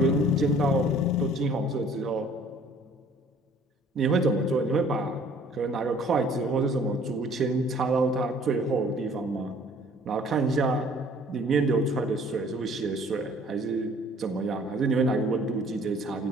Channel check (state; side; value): normal; both; correlation 0.55